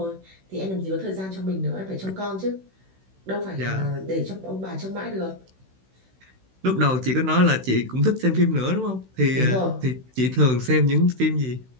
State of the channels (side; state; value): left; late; 16 ms